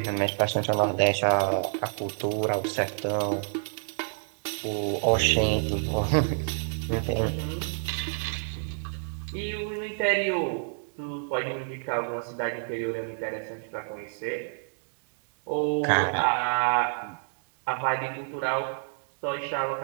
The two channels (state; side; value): silent; left; digital silence